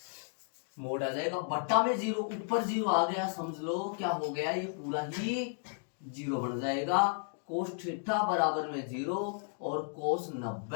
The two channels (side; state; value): right; silent; 55 dB below the other